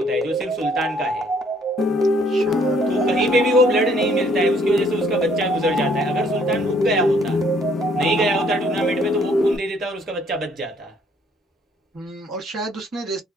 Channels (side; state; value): both; normal; correlation 0.64